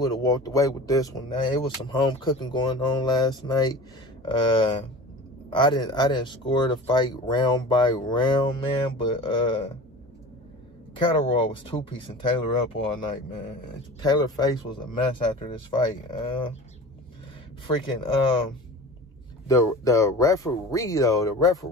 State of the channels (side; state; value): both; normal; correlation 0.37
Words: have walked away with this one. Now, it was some home cooking going on last night. I didn't score the fight round by round, man, but Catterall was two-piecing Taylor up all night, man. Taylor's face was a mess after this fight. The referee though, the